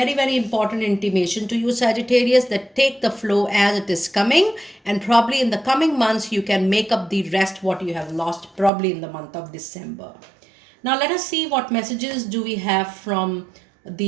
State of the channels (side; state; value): left; drops out; at 8.7 s